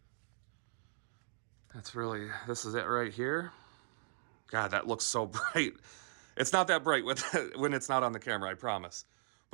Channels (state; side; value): silent; left; digital silence